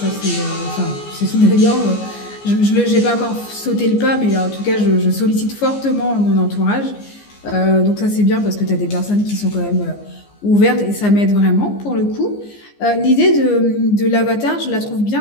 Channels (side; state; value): right; late; 14 ms